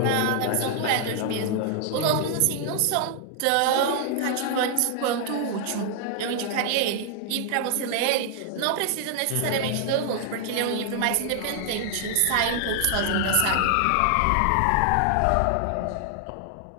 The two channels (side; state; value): both; different; correlation 0.00